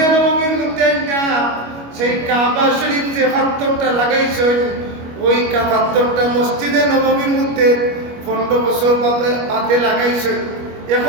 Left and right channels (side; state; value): left; late; 25 ms